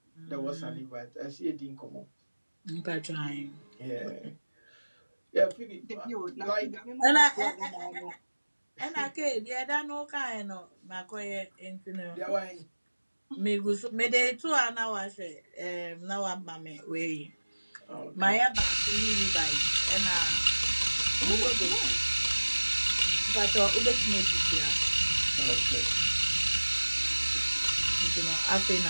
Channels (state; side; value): inverted; both; correlation -1.00